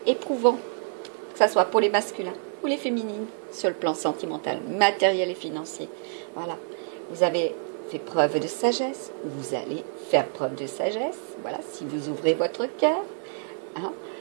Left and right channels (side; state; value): left; silent; digital silence